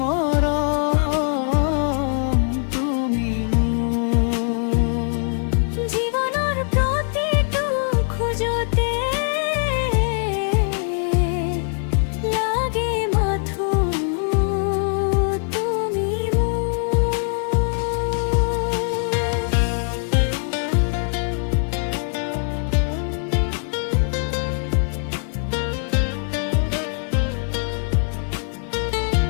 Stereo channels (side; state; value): right; silent; 64 dB below the other